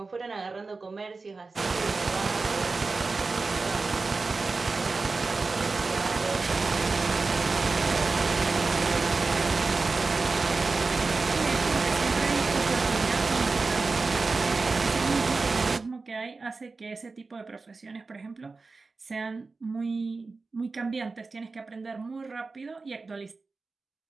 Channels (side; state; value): left; quieter; 4.0 dB